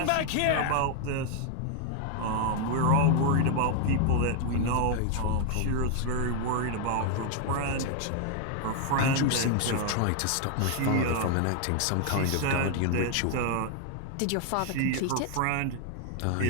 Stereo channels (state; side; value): different; both; correlation 0.00